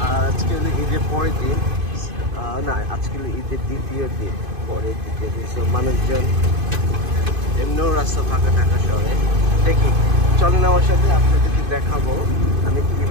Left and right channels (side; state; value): left; late; 2.5 ms